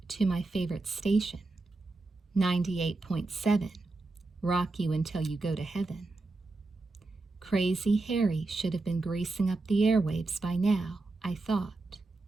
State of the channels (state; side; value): quieter; left; 3.3 dB